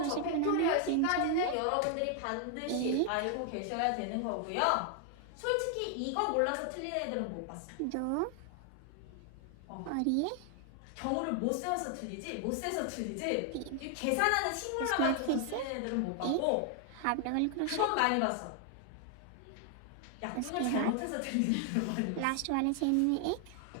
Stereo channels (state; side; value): different; both; correlation 0.00